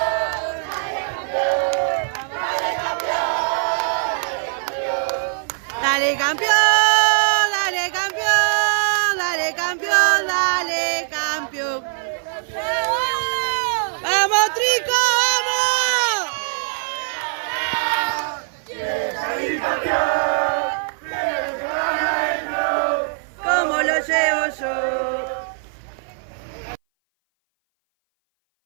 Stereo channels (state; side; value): silent; left; 59 dB below the other